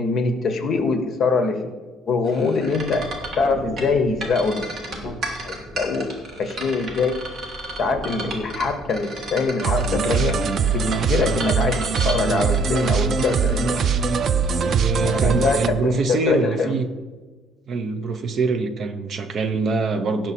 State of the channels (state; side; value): normal; both; correlation 0.61